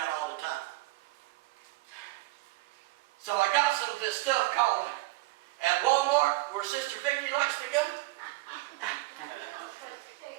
all the time. So I got some of this stuff called at Walmart where Sister Vicky likes to go.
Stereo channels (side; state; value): left; quieter; 20.0 dB